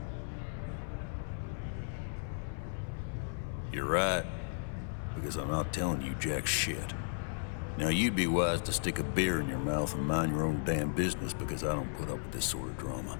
You're right, because I'm not telling you jack shit. Now you'd be wise to stick a beer in your mouth and mind your own damn business, because I don't put up with this sort of drama.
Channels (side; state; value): right; silent; 54 dB below the other